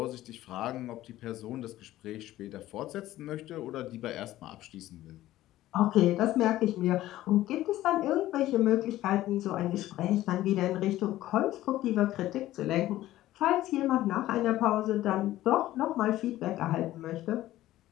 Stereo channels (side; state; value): right; quieter; 14.9 dB